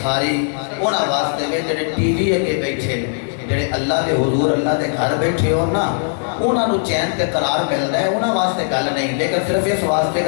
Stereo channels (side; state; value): right; silent; 65 dB below the other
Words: ساری انہاں واسطے میں جڑے ٹی وی اگے بیٹھے جڑے اللہ دے حضور اللہ دے گھر بیٹھے ہو نا انہاں نو چین تے قرار ملدا ہے انہاں واسطے گل نہیں لیکن صرف اس واسطے